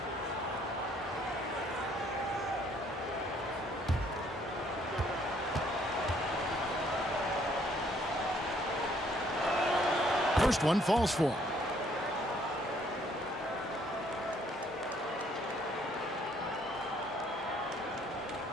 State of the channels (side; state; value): both; normal; correlation 0.64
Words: First one falls for him.